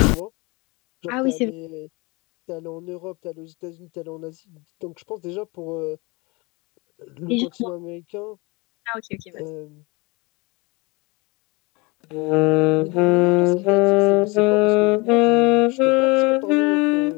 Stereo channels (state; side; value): quieter; right; 26.6 dB